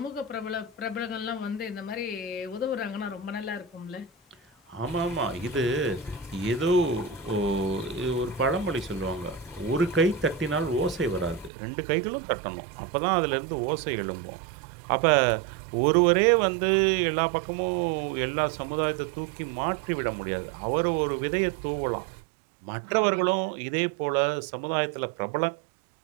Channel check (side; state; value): left; drops out; at 11.5 s